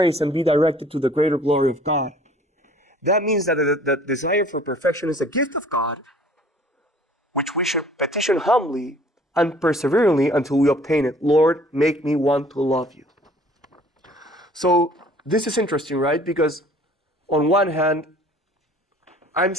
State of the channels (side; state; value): both; normal; correlation 0.53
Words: and be directed to the greater glory of God. That means that the desire for perfection is a gift of God, which we should petition humbly and perseveringly until we obtain it. Lord, make me want to love you. So this is interesting, right? Because on one hand, I'm